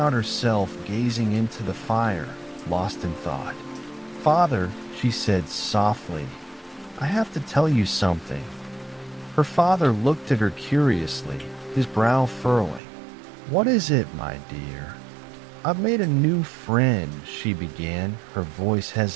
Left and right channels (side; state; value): left; drops out; at 12.8 s